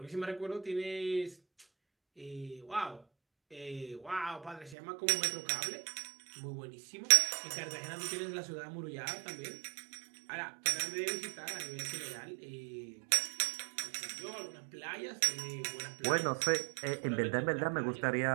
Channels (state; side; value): drops out; left; at 4.8 s